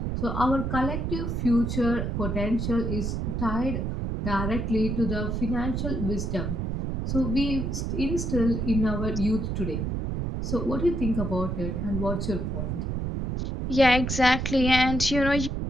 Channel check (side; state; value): right; noise; rumble, 2 dB below the sound